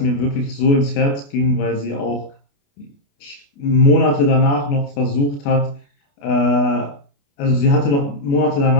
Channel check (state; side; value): late; right; 28 ms